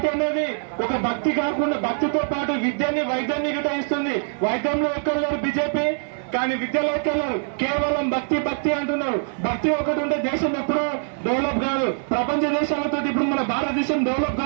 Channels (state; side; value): silent; left; 63 dB below the other